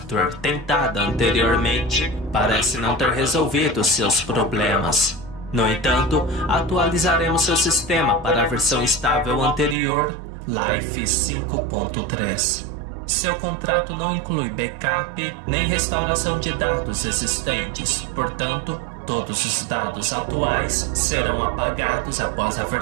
tentada anteriormente parece não ter resolvido seus problemas. No entanto, atualizaremos seu sistema para a versão estável anterior, Life 5.3. Seu contrato não inclui backup nem restauração de dados existentes, portanto, todos os dados atuais serão apagados após a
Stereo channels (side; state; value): left; drops out; at 9.8 s